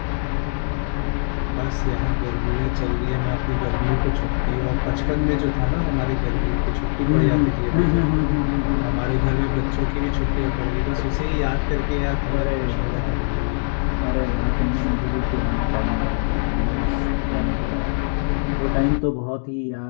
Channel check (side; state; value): right; silent; digital silence